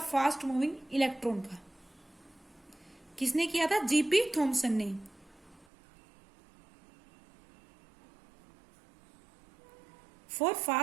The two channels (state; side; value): drops out; left; at 5.7 s